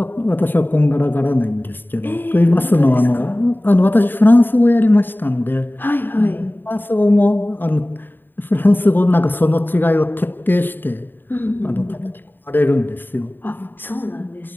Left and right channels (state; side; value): late; right; 0.093 ms